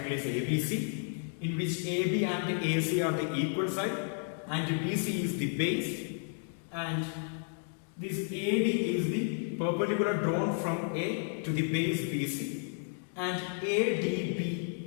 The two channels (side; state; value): right; silent; 56 dB below the other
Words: is ABC, in which AB and AC are the equal side and BC is the base, and this AD is the perpendicular drawn from A to the base BC, and ADB